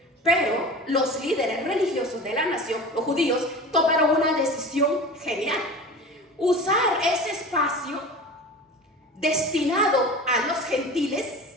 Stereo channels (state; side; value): normal; both; correlation 0.35